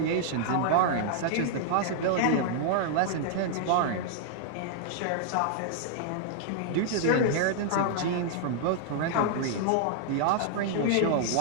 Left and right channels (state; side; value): different; both; correlation -0.01